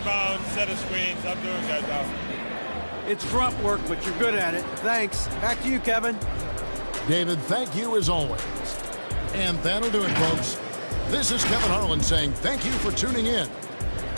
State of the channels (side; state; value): both; inverted; correlation -1.00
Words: set of screens. I'm doing that job. It's grunt work, but you're good at it. Thanks. Back to you, Kevin. David, thank you as always. And that'll do it, folks. This is Kevin Harlan saying thank you for tuning in.